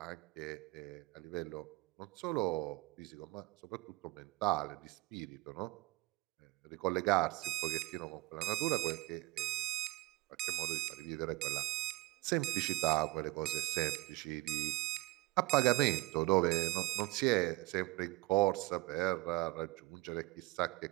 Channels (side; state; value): left; quieter; 21.5 dB